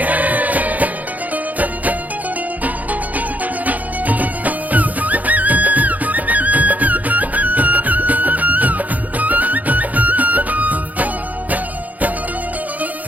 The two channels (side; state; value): left; late; 0.078 ms